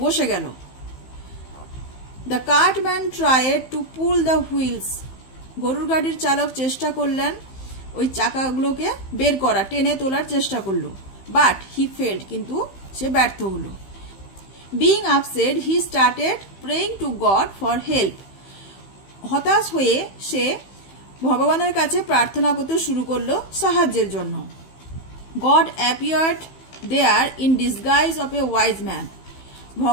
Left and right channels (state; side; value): late; right; 15 ms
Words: বসে গেল। The cartman tried to pull the wheels, গরুর গাড়ির চালক চেষ্টা করলেন ওই চাকাগুলোকে বের করা, টেনে তোলার চেষ্টা করলো। বাট হি ফেল্ড, কিন্তু সে ব্যর্থ হলো। Being upset, he started praying two god for help, হতাশ হয়ে সে ভগবানের কাছে প্রার্থনা করতে শুরু করলো সাহায্যের জন্য। God appeared there in disguise of a wise man,